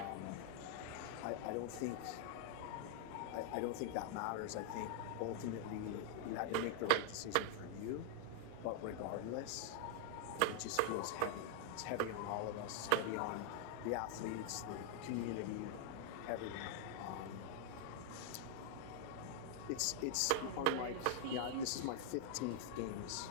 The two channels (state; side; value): different; both; correlation 0.00